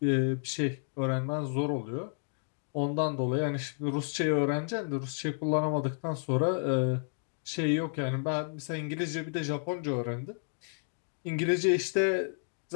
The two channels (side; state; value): right; silent; digital silence